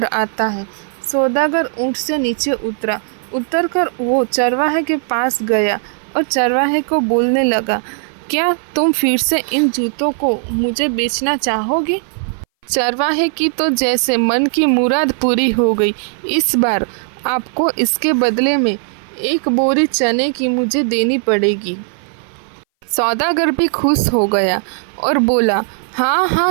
आता है। सौदागर ऊँट से नीचे उतरकर वो चरवाहे के पास गया और चरवाहे को बोलने लगा, क्या तुम फिर से इन जूतों को मुझे बेचना चाहोगे? चरवाहे की तो जैसे मन की मुराद पूरी हो गई। इस बार आपको इसके बदले में 1 बोरी चने की मुझे देनी पड़ेगी। सौदागर भी खुश हो गया और बोला, हाँ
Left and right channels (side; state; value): left; silent; 61 dB below the other